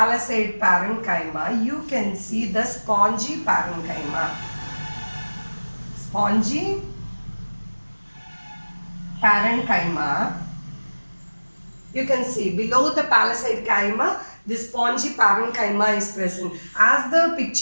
parenchyma, you can see the spongy parenchyma. Spongy parenchyma. You can see below the palisade chyma, the spongy parenchyma is present. As the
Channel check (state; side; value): inverted; both; correlation -1.00